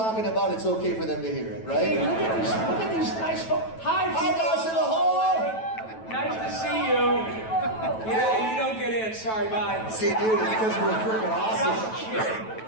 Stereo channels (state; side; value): late; right; 9.2 ms